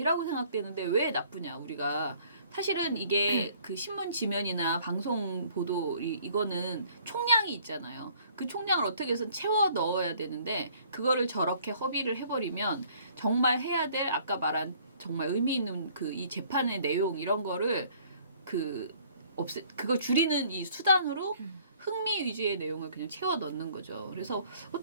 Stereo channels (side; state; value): both; inverted; correlation -0.58